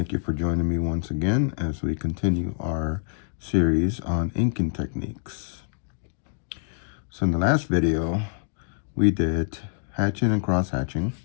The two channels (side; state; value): right; silent; digital silence